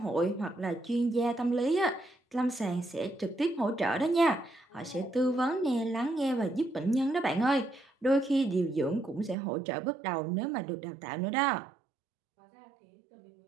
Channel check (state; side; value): drops out; left; at 9.3 s